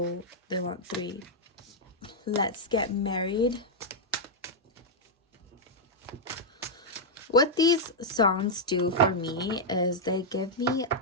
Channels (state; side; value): normal; both; correlation -0.03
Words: they want 3. Let's Get Married. What these songs do for me is they connect me